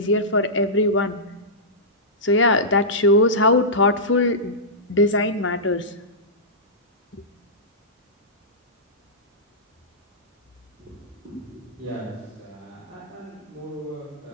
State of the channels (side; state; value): both; normal; correlation -0.15